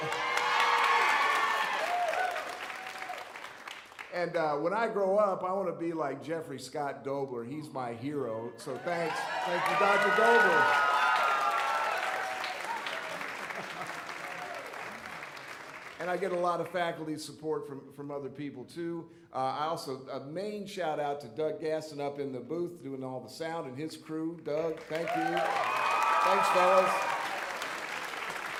And when I grow up, I want to be like Jeffrey Scott Dobler. He's my hero. So thanks. Thank you, Dr. Dobler. And I get a lot of faculty support from other people, too. I also, a main shout out to Doug Gaston up in the booth doing all the sound and his crew. Doug, thank you. Thanks, fellas.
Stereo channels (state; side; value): identical; both; correlation 1.00